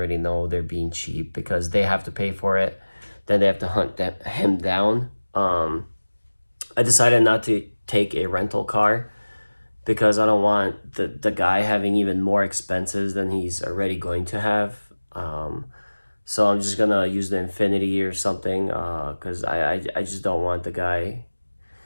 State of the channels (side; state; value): both; inverted; correlation -1.00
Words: know they're being cheap because they have to pay for it. Then they have to hunt him down. I decided not to take a rental car because I don't want the guy having even more expenses than he's already going to have. So I'm just gonna use the Infinity or something because I just don't want the guy